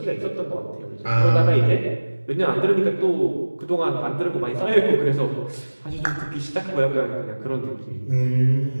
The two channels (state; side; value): inverted; both; correlation -1.00